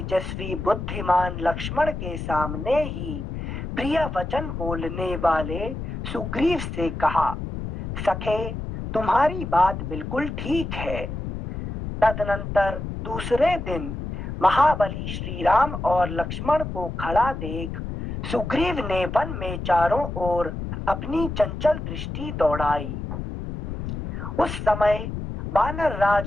बुद्धिमान लक्ष्मण के सामने ही प्रिय वचन बोलने वाले सुग्रीव से कहा, सखे तुम्हारी बात बिल्कुल ठीक है। तदनंतर दूसरे दिन महाबली श्री राम और लक्ष्मण को खड़ा देख सुग्रीव ने वन में चारों ओर अपनी चंचल दृष्टि दौड़ाई। उस समय वानर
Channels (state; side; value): noise; left; rumble, 6 dB below the sound